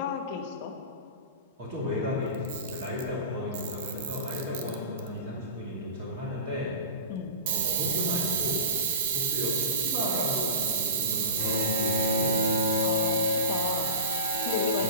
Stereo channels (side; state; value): both; inverted; correlation -0.32